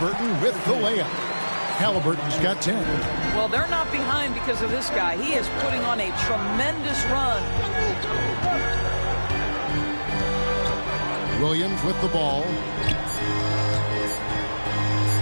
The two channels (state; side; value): inverted; both; correlation -1.00